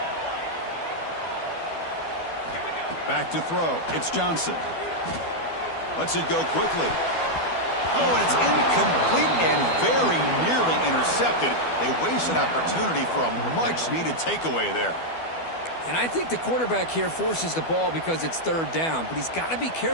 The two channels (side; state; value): right; late; 12 ms